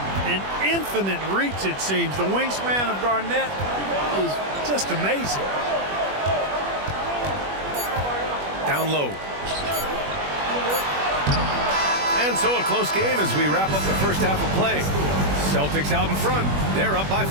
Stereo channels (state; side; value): late; left; 21 ms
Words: An infinite reach, it seems. The wingspan of Garnett is just amazing. Down low. And so a close game as we wrap up the first half of play. Celtics out in front. They're up by